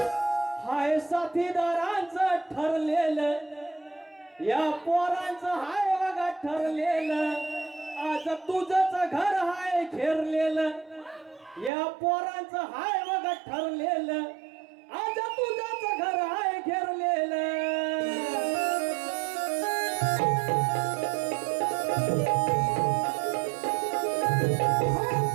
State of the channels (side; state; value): left; drops out; at 11.7 s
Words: हाय साथीदारांचं ठरलेलं या पोरांचं हाय बघा ठरलेलं आज तुझंच घर हाय घेरलेलं या पोरांचं हाय बघा ठरलेलं आज